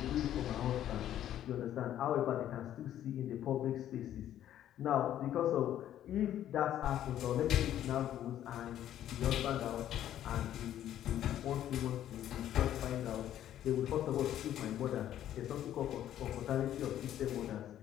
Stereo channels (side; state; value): right; quieter; 11.5 dB